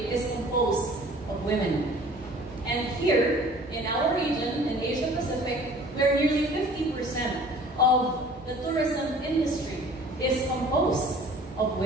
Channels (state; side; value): normal; both; correlation 0.49